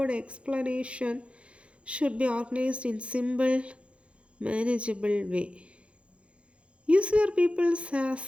explanation should be organized in simple, manageable way. Use your pupils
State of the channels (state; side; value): late; left; 0.060 ms